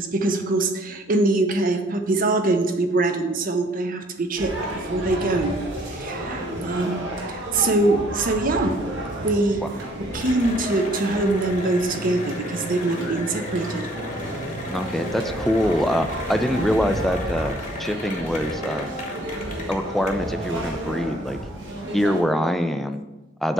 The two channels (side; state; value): both; normal; correlation 0.62